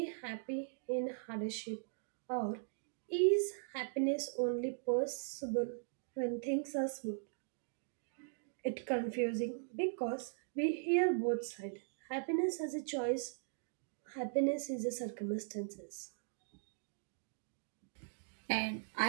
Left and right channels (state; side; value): silent; left; digital silence